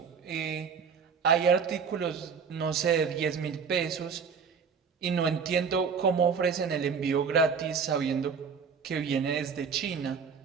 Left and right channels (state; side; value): quieter; left; 6.1 dB